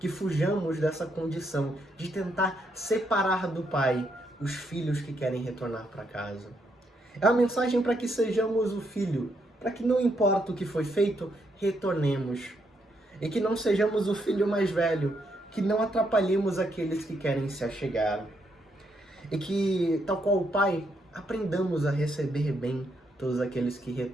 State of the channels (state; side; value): normal; both; correlation 0.77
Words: fujamos dessa condição de tentar separar do Pai os filhos que querem retornar para casa. É uma mensagem para que sejamos o filho, para que não importa o que foi feito, retornemos. E que não sejamos o filho mais velho, que não atrapalhemos aqueles que querem se achegar. E que, tal qual o Pai, aprendamos a receber bem todos aqueles que